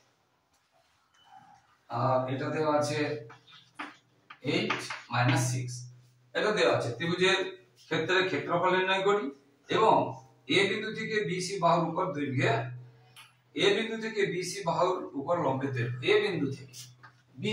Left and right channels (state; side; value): identical; both; correlation 1.00